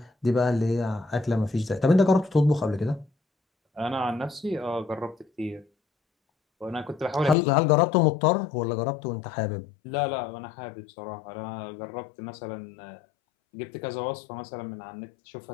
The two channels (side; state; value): right; drops out; at 7.4 s